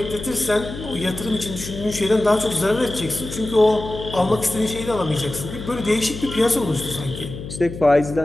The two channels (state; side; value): noise; left; hum, 10 dB below the sound